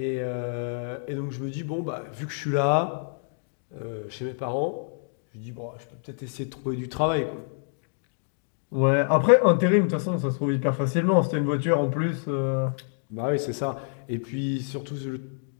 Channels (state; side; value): silent; right; digital silence